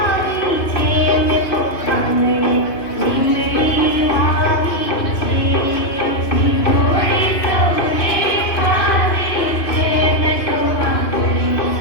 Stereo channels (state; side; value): late; right; 2.9 ms